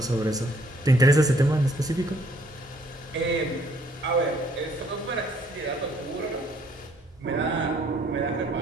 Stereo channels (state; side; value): normal; both; correlation 0.63